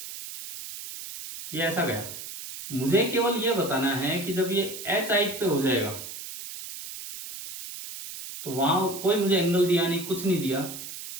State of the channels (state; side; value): noise; right; hiss, 10 dB below the sound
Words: ये ऐसा गया। मुझे केवल ये बताना है कि जब ये एच हाइट पे हो जाएगा तो वहां कोई मुझे एंगल दिया नहीं, कुछ नहीं दिया,